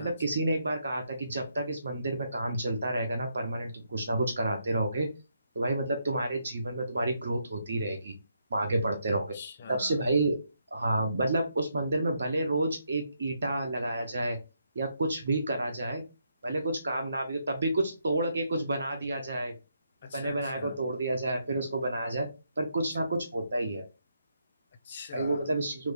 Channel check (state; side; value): inverted; both; correlation -0.77